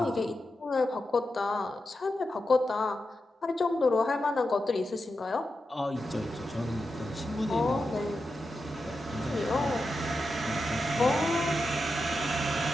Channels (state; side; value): normal; both; correlation 0.89